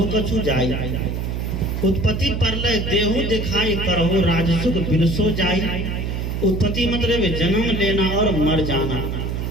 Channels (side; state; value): right; noise; hum, 3 dB below the sound